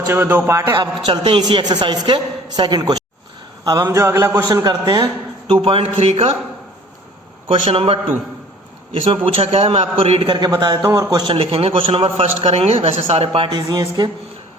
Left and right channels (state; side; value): normal; both; correlation 0.50